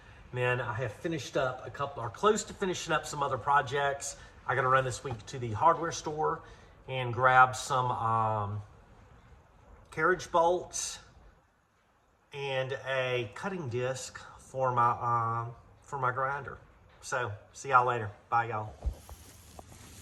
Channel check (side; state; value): both; identical; correlation 1.00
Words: And then I have finished up a couple, or close to finishing up some other projects. I got to run this week to the hardware store and grab some carriage bolts and a cutting disc for my grinder. So, see y'all later. Bye, y'all.